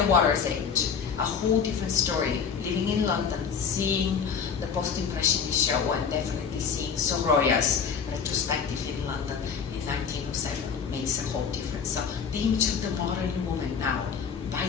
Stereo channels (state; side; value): quieter; right; 6.6 dB